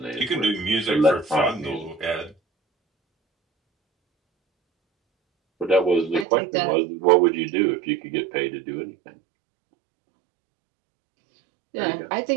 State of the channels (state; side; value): drops out; left; at 6.2 s